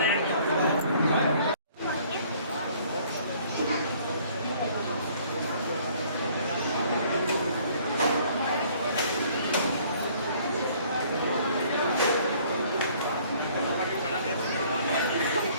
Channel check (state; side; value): inverted; both; correlation -0.58